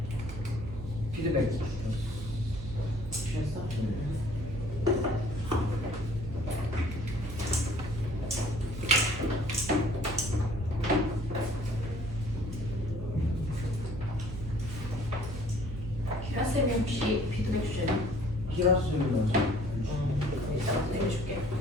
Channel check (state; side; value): noise; right; hum, 8 dB below the sound